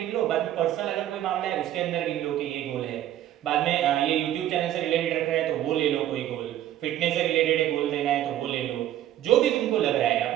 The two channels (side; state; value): left; quieter; 12.4 dB